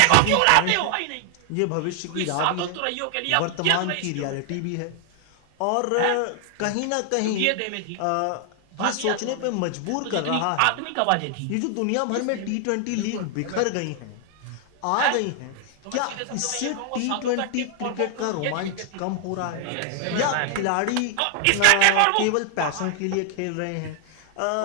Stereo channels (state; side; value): different; both; correlation 0.00